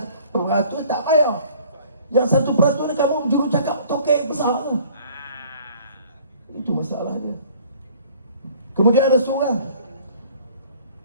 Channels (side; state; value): both; inverted; correlation -0.52